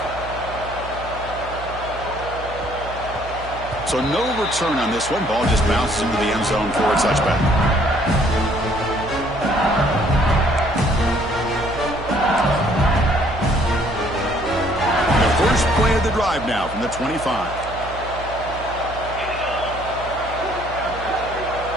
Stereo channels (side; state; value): right; noise; hum, 12 dB below the sound